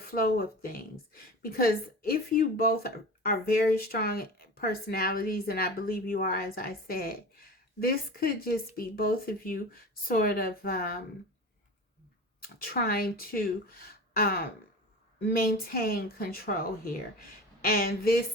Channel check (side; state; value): both; normal; correlation 0.33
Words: of things. Because if you both are very strong personalities, and I believe you are, as I said, this could just be both of you sort of trying to um, maintain control here. And